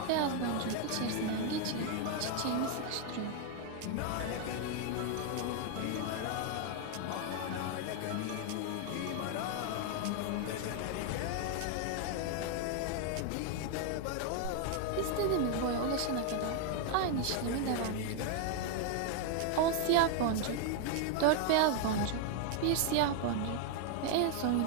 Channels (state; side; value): different; both; correlation 0.01